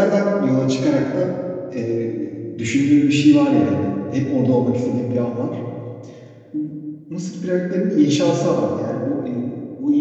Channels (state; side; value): identical; both; correlation 1.00